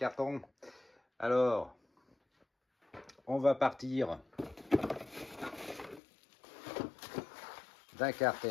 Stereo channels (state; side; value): drops out; right; at 6.0 s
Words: Alors, on va partir d'un